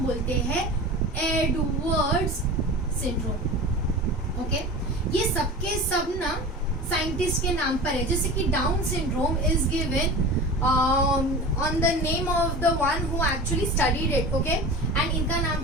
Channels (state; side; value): normal; both; correlation 0.34